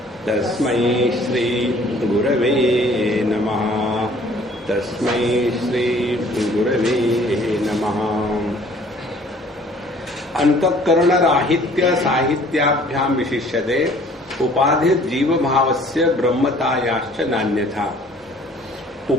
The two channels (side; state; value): both; normal; correlation 0.55